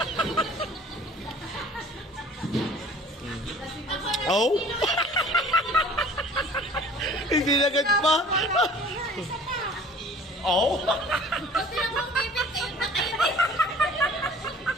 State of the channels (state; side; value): normal; both; correlation 0.49